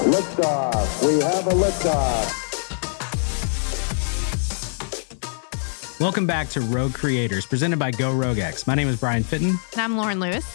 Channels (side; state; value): right; silent; digital silence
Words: Liftoff. We have a liftoff. Welcome back to Rogue Creators, presented by Go RogueX. My name is Brian Fitton. And I'm Lauren Lewis.